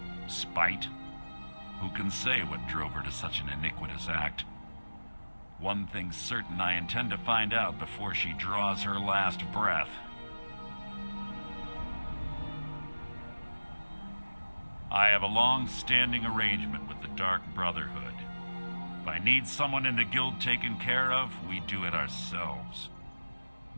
Spite? Who can say what drove her to such an iniquitous act? One thing's certain, I intend to find out before she draws her last breath. I have a long-standing arrangement with the Dark Brotherhood. If I need someone in the guild taken care of, we do it ourselves.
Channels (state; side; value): inverted; both; correlation -1.00